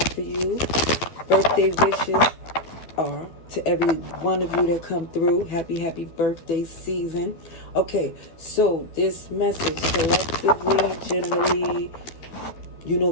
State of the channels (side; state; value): right; late; 12 ms